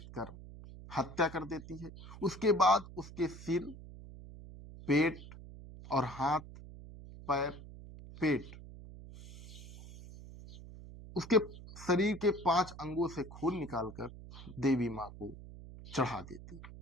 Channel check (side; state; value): right; noise; hum, 15 dB below the sound